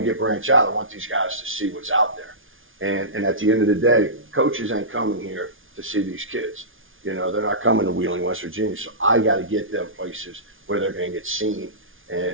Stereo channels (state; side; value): late; left; 0.58 ms